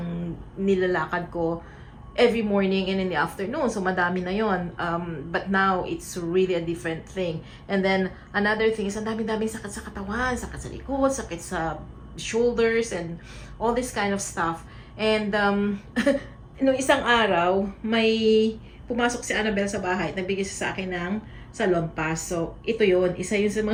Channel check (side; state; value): both; identical; correlation 1.00